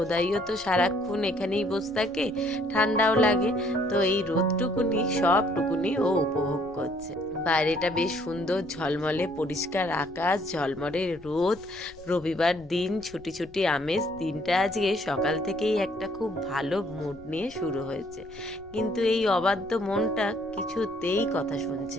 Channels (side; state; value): left; noise; rumble, 24 dB below the sound